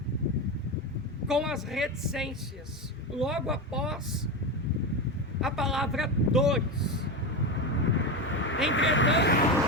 com as reticências logo após a palavra dores. Entretanto,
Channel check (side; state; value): both; normal; correlation 0.16